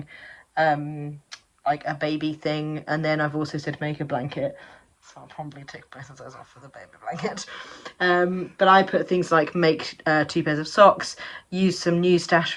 like a baby thing, and then I've also said make a blanket, so I'll probably tick both of those off for the baby blanket. But I put things like make 2 pairs of socks, use some new stash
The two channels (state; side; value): identical; both; correlation 1.00